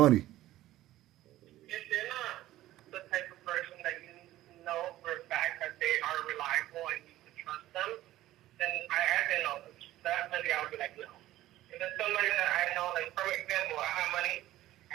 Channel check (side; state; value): left; quieter; 15.0 dB